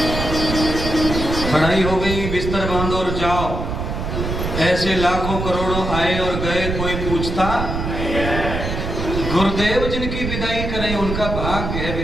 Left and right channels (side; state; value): right; noise; rumble, 4 dB below the sound